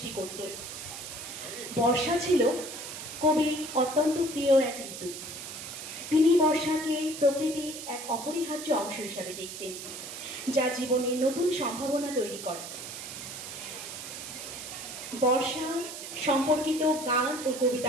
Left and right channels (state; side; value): noise; right; hiss, 9 dB below the sound